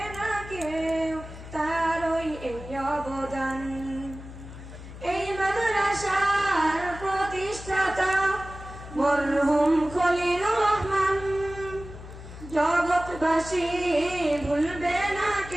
না কেউ তারই এই অবদান। এই মাদ্রাসার প্রতিষ্ঠাতা মরহুম খলিলুর রহমান, জগৎবাসী ভুলবে না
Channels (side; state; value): left; noise; hum, 14 dB below the sound